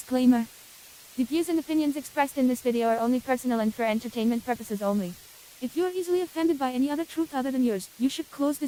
The views and opinions expressed in this video are only personal and for entertainment purposes only. If you are easily offended by any other truth other than yours, you should close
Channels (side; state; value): both; identical; correlation 1.00